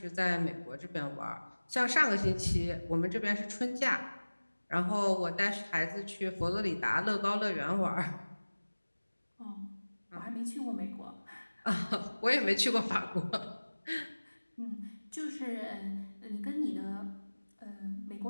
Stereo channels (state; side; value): inverted; both; correlation -1.00